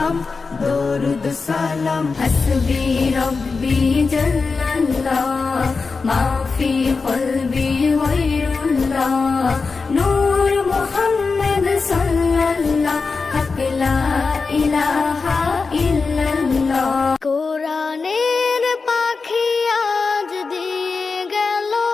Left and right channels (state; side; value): quieter; right; 4.5 dB